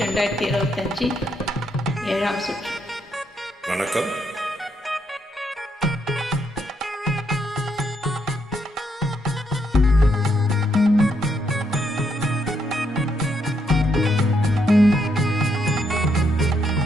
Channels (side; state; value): both; normal; correlation 0.76